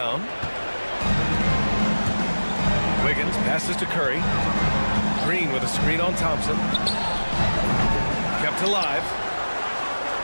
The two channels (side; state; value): both; inverted; correlation -1.00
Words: Wiggins passes to Curry. Green with a screen on Thompson. Kept alive.